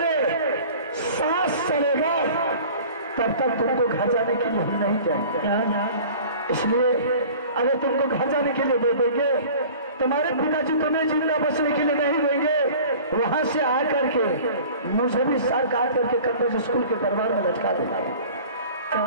सांस चलेगा तब तक तुमको घर जाने के लिए हम नहीं जाएंगे। इसलिए अगर तुमको घर जाने के लिए दे देंगे, तुम्हारे पिताजी तुम्हें जिंदा बचने के लिए नहीं देंगे, वहां से आकर के मुझे भी सर काट करके कन्वेंट स्कूल के दरबार में लटका देना। तो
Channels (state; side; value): inverted; both; correlation -0.44